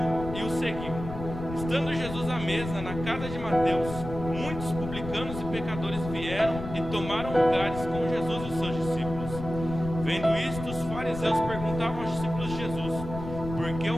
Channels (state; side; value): noise; left; rumble, 9 dB below the sound